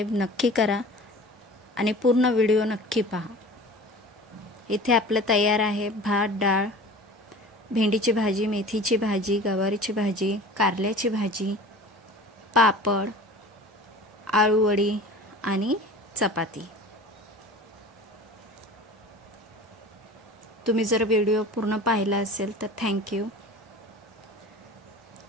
नक्की करा आणि पूर्ण व्हिडिओ नक्की पहा. इथे आपलं तयार आहे भात, डाळ, भेंडीची भाजी, मेथीची भाजी, गवारीची भाजी, कारल्याची भाजी, पापड, आळूवडी आणि चपाती. तुम्ही जर व्हिडिओ पूर्ण पाहिला असेल तर thank you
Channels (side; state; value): both; normal; correlation 0.40